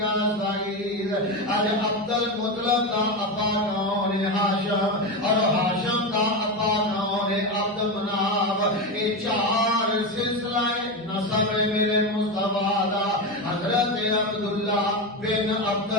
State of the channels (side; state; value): both; normal; correlation 0.15